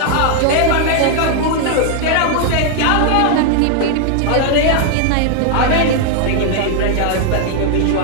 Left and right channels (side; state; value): both; different; correlation 0.00